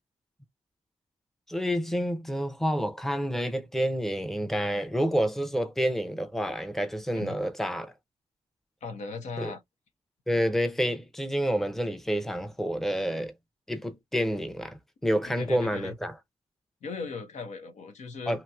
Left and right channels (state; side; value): normal; both; correlation 0.92